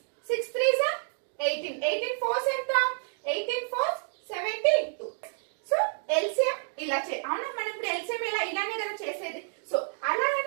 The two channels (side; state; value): left; silent; digital silence